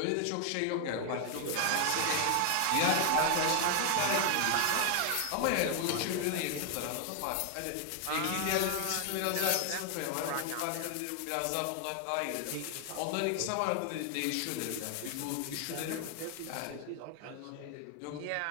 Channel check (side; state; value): both; different; correlation 0.00